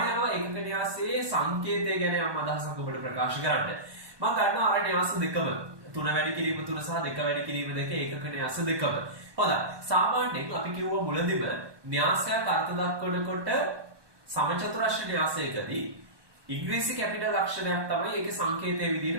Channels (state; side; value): late; left; 1.2 ms